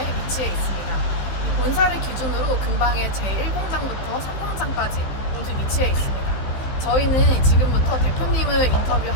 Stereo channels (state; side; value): late; right; 15 ms